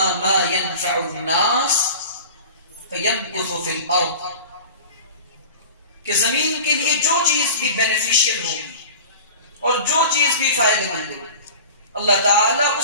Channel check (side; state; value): both; inverted; correlation -0.36